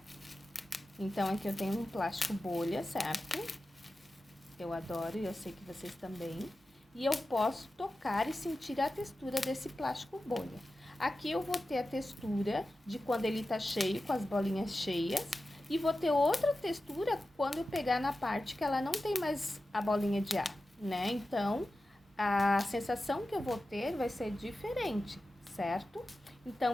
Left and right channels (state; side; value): normal; both; correlation 0.93